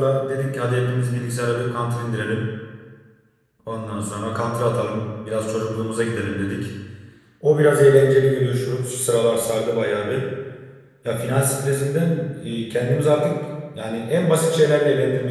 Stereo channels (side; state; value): both; identical; correlation 1.00